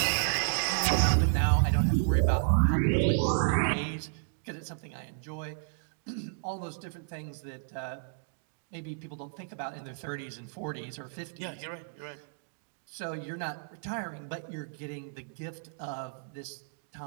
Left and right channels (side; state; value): left; silent; digital silence